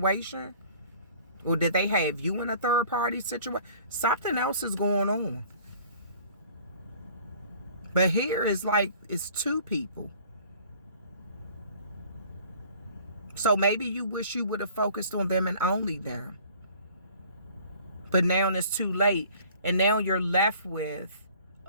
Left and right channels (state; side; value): inverted; both; correlation -0.51